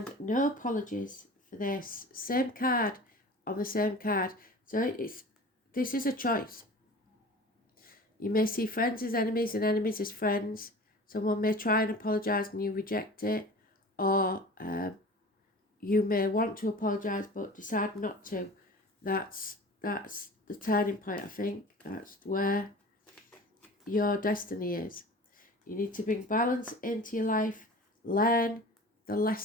no apologies for this. Same card on the same card. So this is a choice. You may see friends as enemies and enemies as friends. Someone may try and apologise and you reject it. Or you may want to apologise but decide not to. That's the turning point, I think. That's where your destiny is. You need to bring balance into your life. Learn the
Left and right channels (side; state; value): both; normal; correlation 0.40